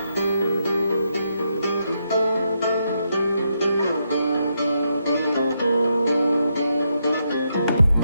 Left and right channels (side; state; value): both; inverted; correlation -0.80